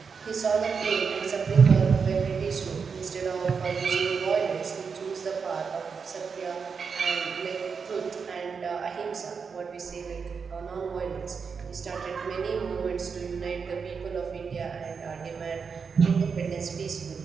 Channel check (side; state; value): left; quieter; 5.7 dB